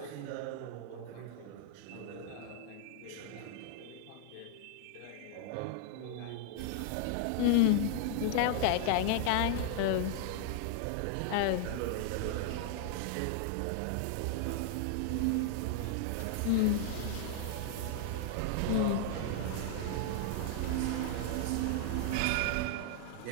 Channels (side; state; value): both; different; correlation 0.00